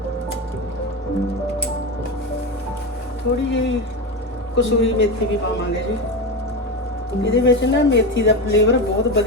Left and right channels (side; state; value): both; normal; correlation 0.19